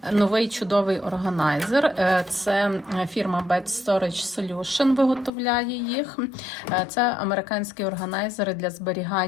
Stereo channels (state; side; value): drops out; right; at 5.3 s